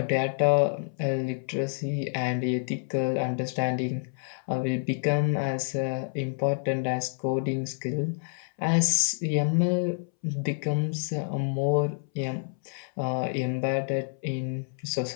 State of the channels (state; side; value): silent; right; 59 dB below the other